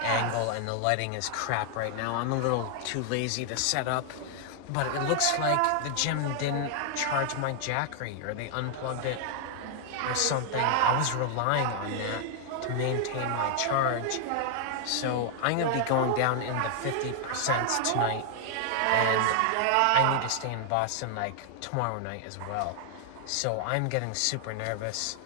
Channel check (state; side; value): different; both; correlation 0.00